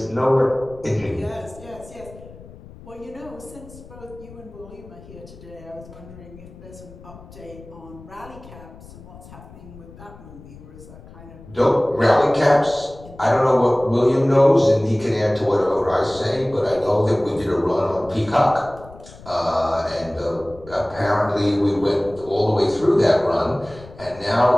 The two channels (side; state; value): left; noise; rumble, 19 dB below the sound